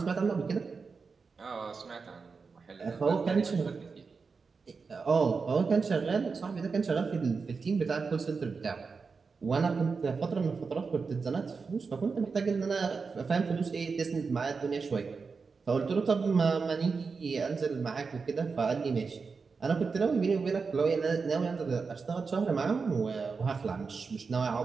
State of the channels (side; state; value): left; quieter; 4.9 dB